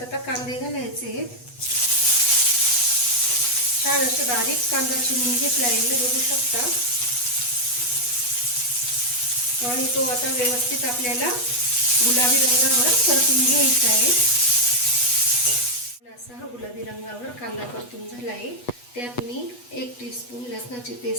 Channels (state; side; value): late; right; 8.2 ms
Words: आता कांदे घालायचे आहेत। छान असं बारीक कांदा चिरून घेतलाय मी बघू शकता। आणि तो आता व्यवस्थित आपल्याला गुलाबी रंगावर परतून घ्यायचा आहे। असा हा गुलाबी रंगावर कांदा परतून झाला आहे। त्यात मी 1 टीस्पून लसणाची